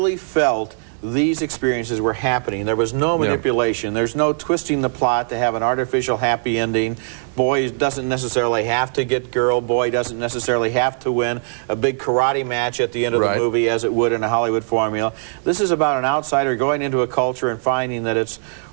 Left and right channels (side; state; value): left; silent; digital silence